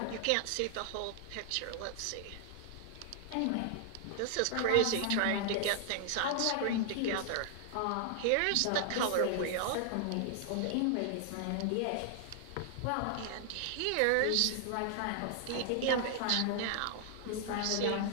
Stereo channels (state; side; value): different; both; correlation 0.00